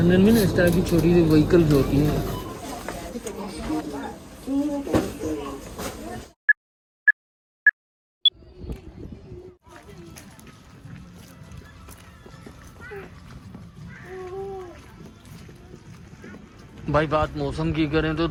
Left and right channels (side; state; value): both; identical; correlation 1.00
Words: में ना इस तरह की छोटी सी व्हीकल्स होती हैं। भाई बात मौसम की करें तो